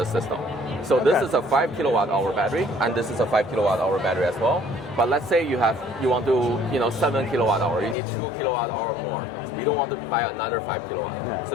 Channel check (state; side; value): drops out; right; at 8.0 s